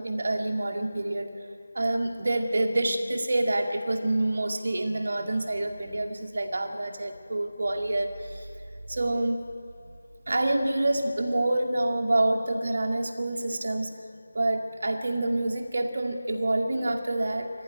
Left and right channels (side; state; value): both; inverted; correlation -0.97